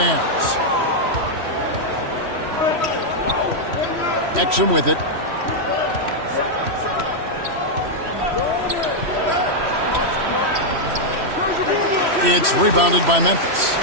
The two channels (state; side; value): late; left; 3.1 ms